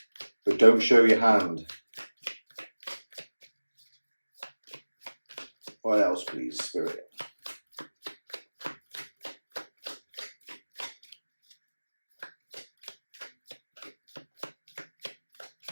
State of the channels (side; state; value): both; inverted; correlation -1.00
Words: but don't show your hand. What else, please, Spirit?